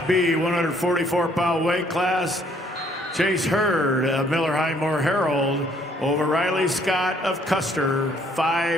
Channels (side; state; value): both; normal; correlation 0.64